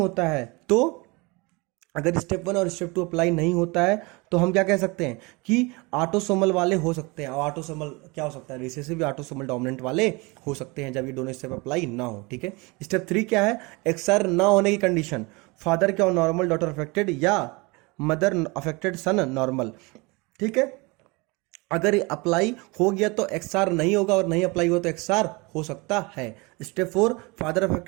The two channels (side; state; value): left; quieter; 26.4 dB